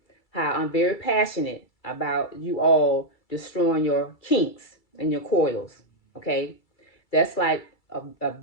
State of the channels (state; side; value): late; right; 2.3 ms